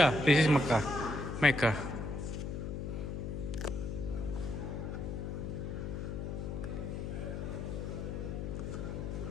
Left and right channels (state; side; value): noise; left; hum, 4 dB below the sound